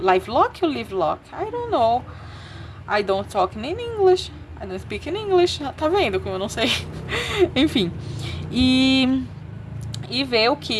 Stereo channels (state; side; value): identical; both; correlation 1.00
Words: Lock ou Live Lock? I don't know. I don't talk in English. I don't speak in English. Tá vendo como eu não sei? Enfim. E ver o